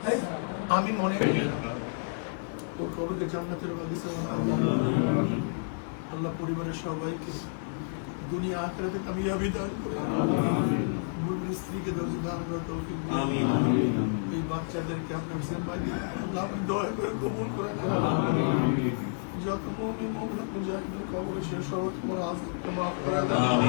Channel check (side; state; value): right; silent; digital silence